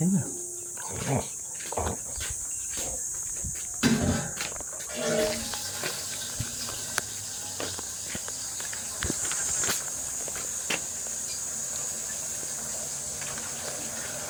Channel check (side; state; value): both; identical; correlation 1.00